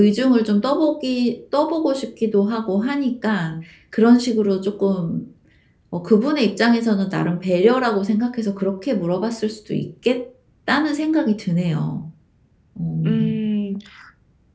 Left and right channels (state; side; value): identical; both; correlation 1.00